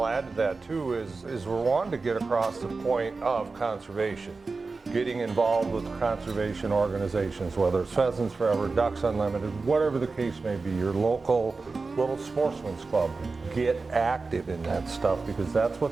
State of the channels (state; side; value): quieter; left; 4.0 dB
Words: add to that too is we're wanting to get across the point of conservation, getting involved with conservation organizations, whether it's Pheasants Forever, Ducks Unlimited, whatever the case may be, your local little sportsman's club. Get active in that stuff, because that's